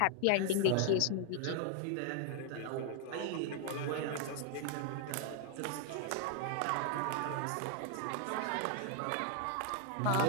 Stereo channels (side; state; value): both; different; correlation 0.00